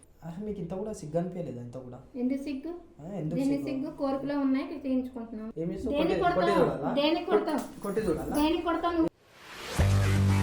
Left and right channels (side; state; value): both; identical; correlation 1.00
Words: అసలు మీకు ఇంత కూడా సిగ్గు అనిపించలేదా ఇంత కూడా ఎందుకు సిగ్గు ఎందుకు సిగ్గు కోరికలో ఉన్నాయి తీయించుకుంటున్నాం ఏమి కొడతావు